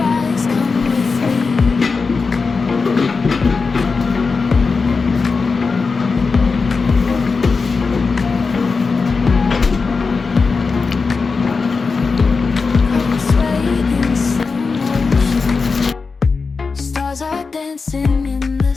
Stars are dancing in the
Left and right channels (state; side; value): quieter; right; 4.6 dB